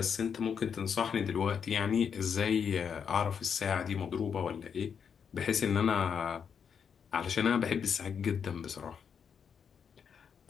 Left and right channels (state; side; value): quieter; right; 7.1 dB